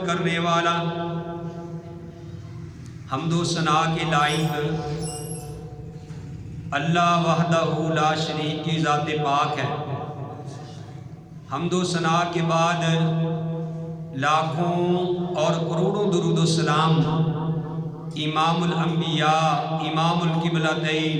کرنے والا. حمد و ثنا کے لائق اللہ وحدہ لا شریک کی ذات پاک ہے. حمد و ثنا کے بعد لاکھوں اور کروڑوں درود و سلام امام الانبیاء امام القبلتین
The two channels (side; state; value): both; identical; correlation 1.00